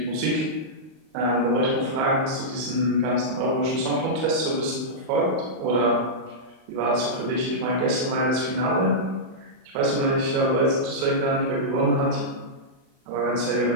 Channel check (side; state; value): left; late; 38 ms